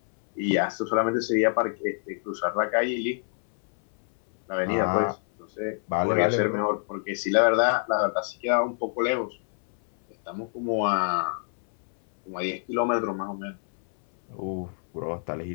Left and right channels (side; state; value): right; silent; 61 dB below the other